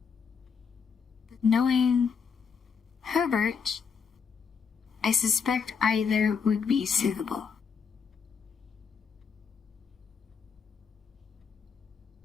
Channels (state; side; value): quieter; right; 6.1 dB